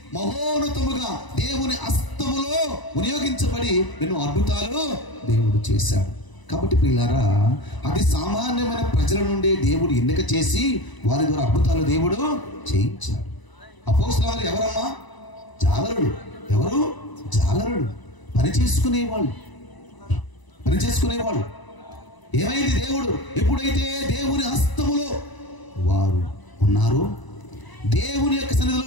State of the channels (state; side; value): late; right; 1.0 ms